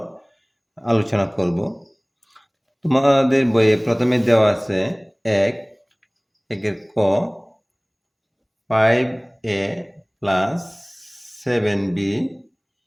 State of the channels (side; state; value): both; identical; correlation 1.00